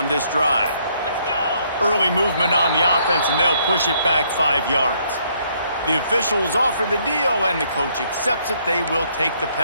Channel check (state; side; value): inverted; both; correlation -0.68